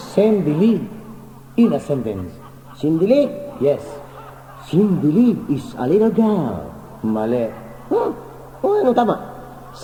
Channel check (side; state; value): both; identical; correlation 1.00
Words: sendili in a sentence. Sindili. Yes. Sindili is a little girl. Mali. Huh? O, ano tama?